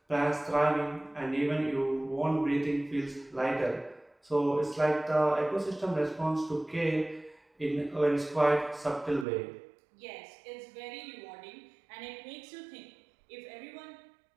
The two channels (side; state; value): left; drops out; at 9.2 s